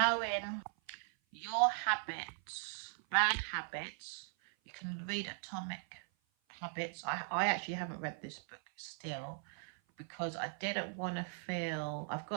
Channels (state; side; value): silent; left; 52 dB below the other